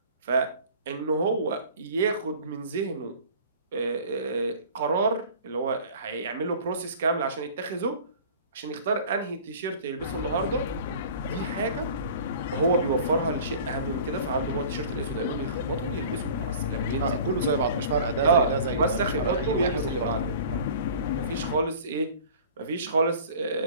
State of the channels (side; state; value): both; inverted; correlation -0.44